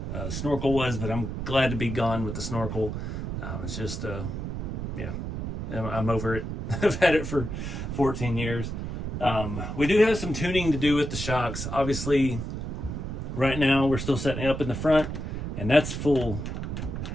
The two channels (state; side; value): noise; right; rumble, 5 dB below the sound